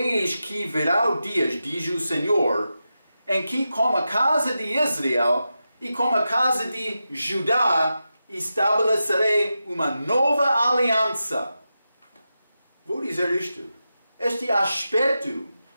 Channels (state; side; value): inverted; both; correlation -0.90